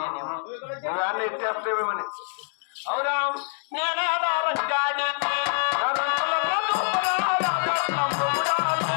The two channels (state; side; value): silent; right; 61 dB below the other